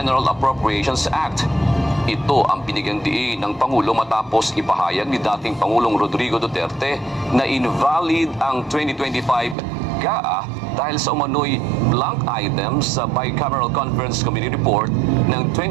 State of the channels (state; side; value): drops out; left; at 9.6 s